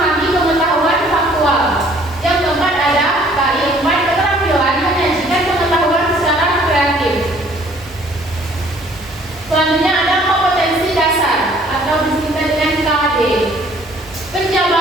pengetahuan faktual. Yang keempat ada KI 4, keterampilan menyajikan pengetahuan secara kreatif. Selanjutnya ada kompetensi dasar atau disingkat dengan KD.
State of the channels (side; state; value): both; normal; correlation 0.58